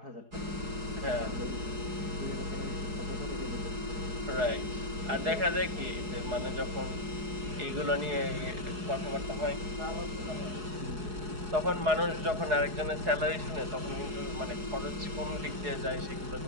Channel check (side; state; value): left; late; 4.8 ms